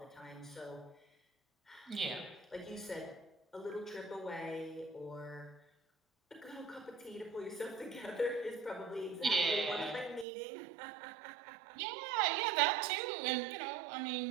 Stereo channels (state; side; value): drops out; left; at 10.2 s